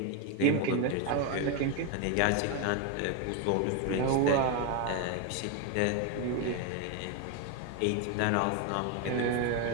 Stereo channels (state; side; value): different; both; correlation 0.01